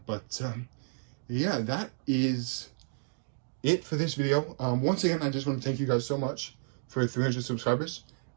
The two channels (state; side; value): silent; left; digital silence